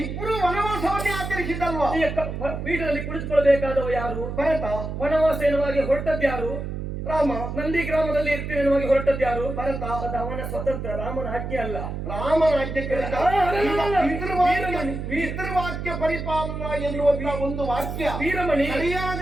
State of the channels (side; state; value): right; noise; hum, 5 dB below the sound